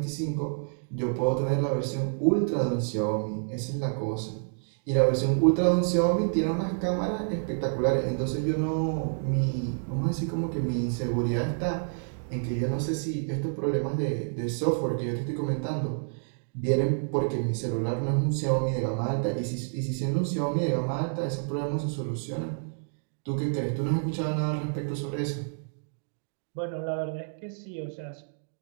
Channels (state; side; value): silent; left; digital silence